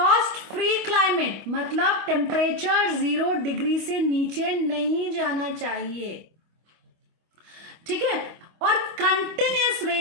free climate. मतलब टेम्परेचर 0 डिग्री से नीचे नहीं जाना चाहिए. ठीक है, और continuous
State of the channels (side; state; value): left; late; 25 ms